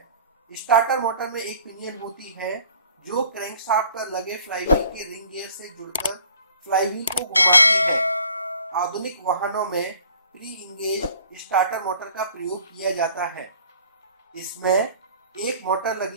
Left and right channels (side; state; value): both; inverted; correlation -0.53